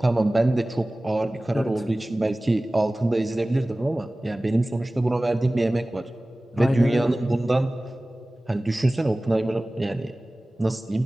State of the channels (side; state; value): both; normal; correlation 0.98